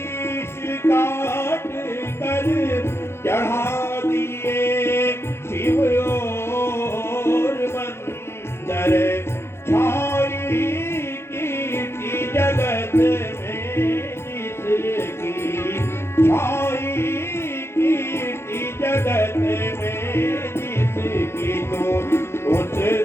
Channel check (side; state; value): right; late; 0.12 ms